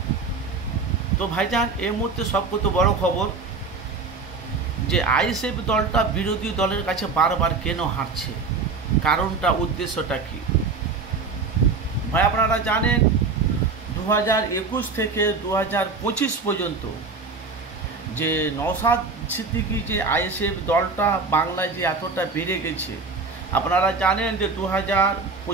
তো ভাইজান, এই মুহূর্তে সবচেয়ে বড় খবর যে আইএসএফ দলটা বিরোধী দলের কাছে বারবার কেন হারছে, কারণটা, উদ্দেশ্যটা কি? ভাই আপনারা জানেন 2021 থেকে 2025 পর্যন্ত যে নওশাদ সিদ্দিকী যে আইএসএফ দলটা বাংলায় যে এতটা বেড়ে গেছে, আপনারা জানেন যে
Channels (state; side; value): quieter; left; 4.3 dB